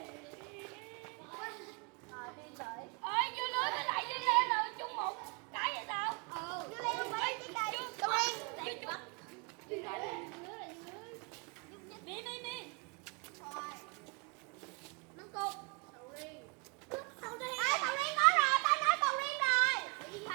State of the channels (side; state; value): left; quieter; 33.9 dB